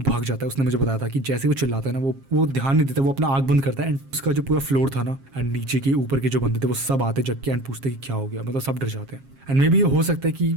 भाग जाता है। उसने मुझे बताया था कि जैसे वो चिल्लाता है ना वो ध्यान नहीं देता, वो अपना आँख बंद करता है एंड उसका जो पूरा फ्लोर था ना एंड नीचे के ऊपर के जो बंदे थे वो सब आते जग के एंड पूछते कि क्या हो गया, मतलब सब डर जाते हैं। एंड मे बी ये हो सकता है कि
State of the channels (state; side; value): late; left; 7.4 ms